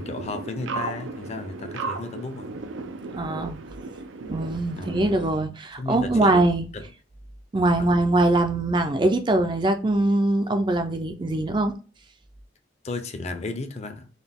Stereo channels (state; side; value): normal; both; correlation 0.67